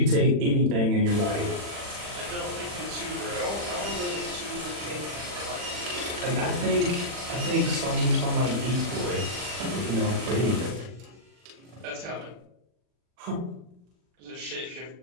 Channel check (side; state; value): left; late; 40 ms